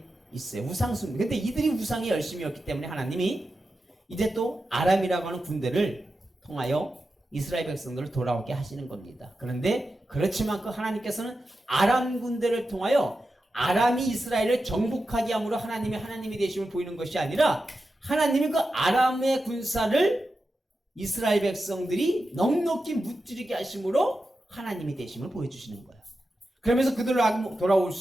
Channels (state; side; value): normal; both; correlation 0.91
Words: 있어요. 우상숭. 근데 이들이 우상의 열심이었기 때문에 하나님이 이제 또 아람이라고 하는 군대를 통하여 이스라엘 백성들을 돌아오게 하시는 겁니다. 그런데 그렇지만 그 하나님께서는 아람 군대를 통하여 아람이 이스라엘을 정복하게 함으로 하나님이 되심을 보이는 것이 아니라, 하나님이 그 아람의 군사를 이스라엘 백성들이 넉넉히 무찌르게 하심으로 하나님이 되심을 보여주시는 거예요. 그러면서 그들로 돌아올